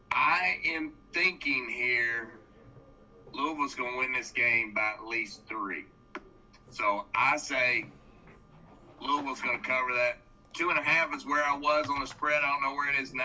I am thinking here Louisville's going to win this game by at least 3. So I say Louisville's going to cover that. 2.5 is where I was on the spread. I don't know where it is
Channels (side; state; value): both; identical; correlation 1.00